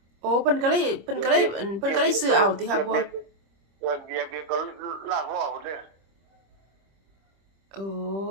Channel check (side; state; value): left; late; 25 ms